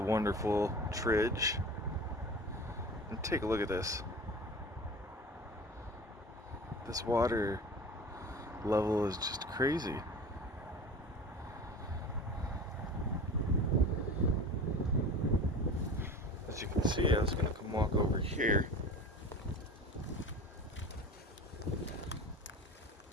Tridge. And take a look at this. This water level is just crazy. As you can see, I was going to come walk over here.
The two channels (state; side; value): normal; both; correlation 0.36